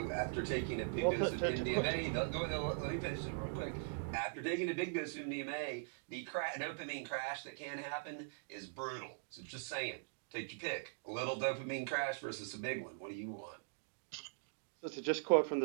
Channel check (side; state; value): left; silent; digital silence